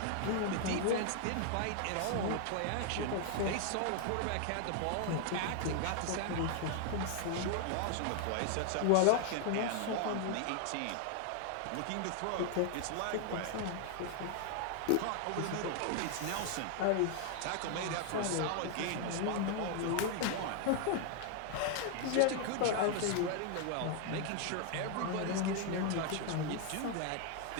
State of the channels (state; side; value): different; both; correlation 0.00